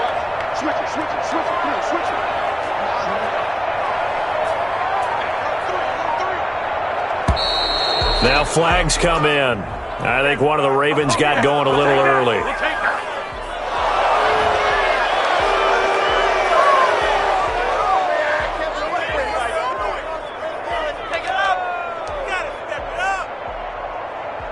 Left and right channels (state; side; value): identical; both; correlation 1.00